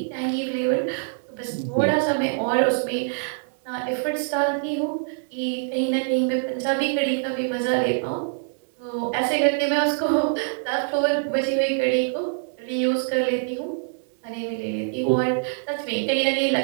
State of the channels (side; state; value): left; silent; digital silence